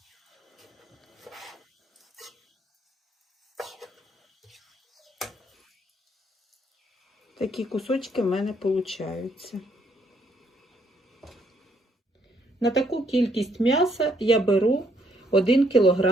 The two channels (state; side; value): normal; both; correlation 0.71